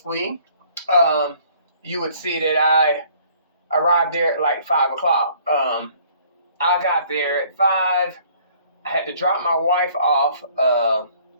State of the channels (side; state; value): both; inverted; correlation -0.58